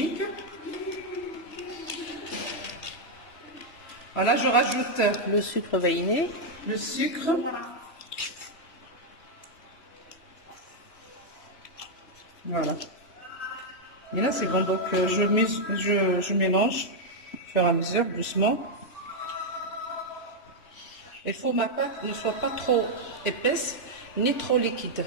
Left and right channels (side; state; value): right; late; 3.0 ms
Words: Voilà, je rajoute le sucre vanillé. le sucre. Voilà. Et là, c'est bon. Donc, je mélange au fur et à mesure, doucement. Il faut que ma pâte ne soit pas trop épaisse, ni trop liquide.